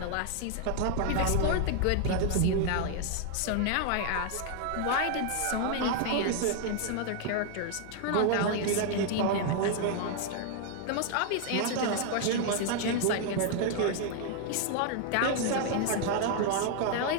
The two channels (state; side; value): different; both; correlation 0.00